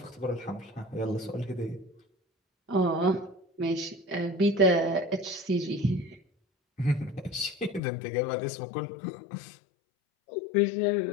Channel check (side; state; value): right; drops out; at 7.8 s